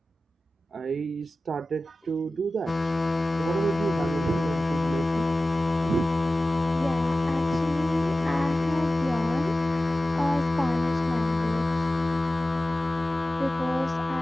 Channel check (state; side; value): normal; both; correlation 0.96